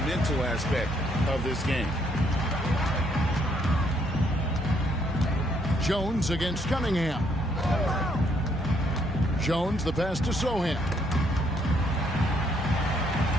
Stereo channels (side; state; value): right; noise; hum, 21 dB below the sound